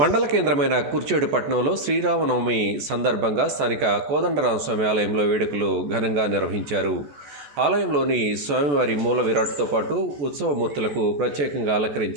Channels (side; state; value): left; late; 14 ms